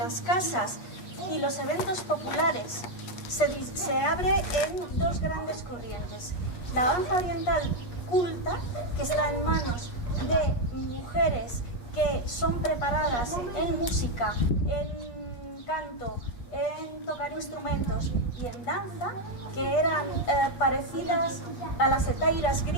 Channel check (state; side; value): late; right; 8.4 ms